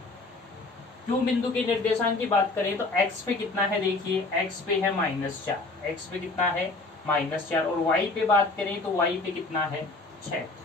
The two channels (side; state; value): right; quieter; 3.3 dB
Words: क्यों बिंदु के निर्देशांक की बात करें तो x पे कितना है, देखिए x पे है -4, x पे कितना है -4। और y पे बात करें तो y पे कितना है, 6।